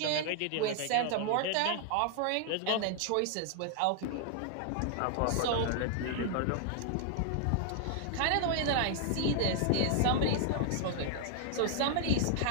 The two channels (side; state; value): both; different; correlation 0.00